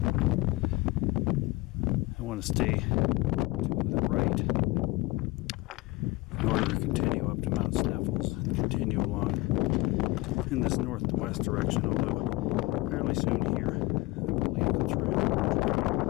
I want to stay to the right in order to continue up to Mount Sneffels and continue along in this northwest direction, although fairly soon here I believe the trail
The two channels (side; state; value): right; quieter; 21.0 dB